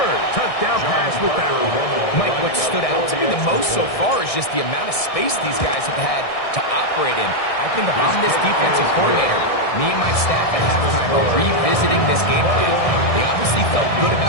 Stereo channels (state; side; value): late; right; 1.6 ms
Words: touchdown pass with that one. Mike, what stood out to me the most so far is just the amount of space these guys have had to operate in. I think if I'm this defensive coordinator, me and my staff at halftime are revisiting this game plan. They obviously felt good